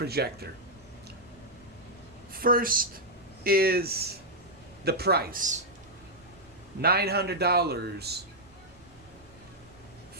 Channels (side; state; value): right; noise; rumble, 26 dB below the sound